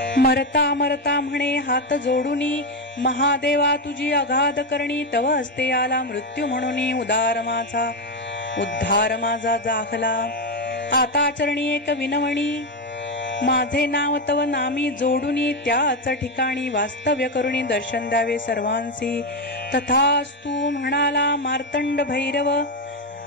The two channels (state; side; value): normal; both; correlation 0.09